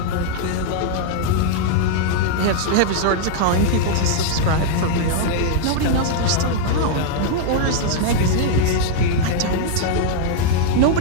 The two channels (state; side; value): different; both; correlation -0.01